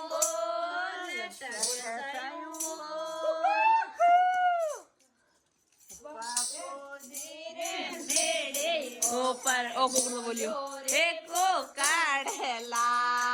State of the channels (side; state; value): both; identical; correlation 1.00